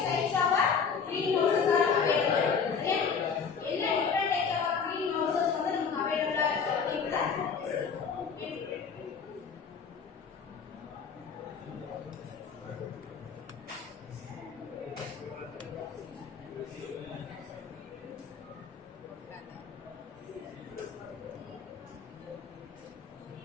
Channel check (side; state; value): right; quieter; 6.1 dB